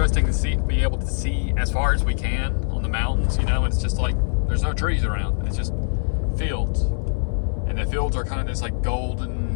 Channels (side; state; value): right; silent; digital silence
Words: to be able to see as far as we can on the mountains. You know, it's just like there's no trees around. It's just fields, and the fields are kind of this like golden